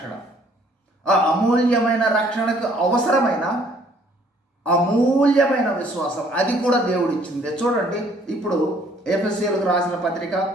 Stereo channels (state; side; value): normal; both; correlation 0.61